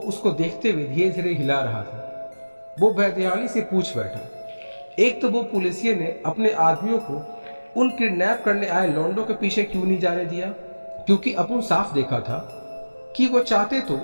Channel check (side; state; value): both; inverted; correlation -1.00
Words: उसको देखते हुए धीरे धीरे हिला रहा था। वो बेध्यानी से पूछ बैठा, एक तो वो पुलिसिये ने अपने आदमियों को उन किडनैप करने आए लौंडों के पीछे क्यों नहीं जाने दिया? क्योंकि अपन साफ देखा था कि वो चाहते तो